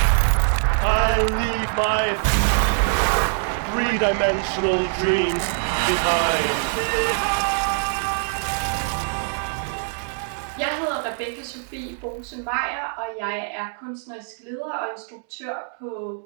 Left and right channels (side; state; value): left; silent; 63 dB below the other